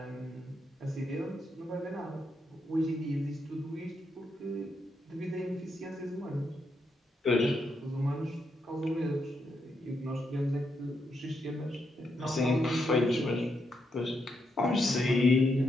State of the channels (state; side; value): normal; both; correlation 0.81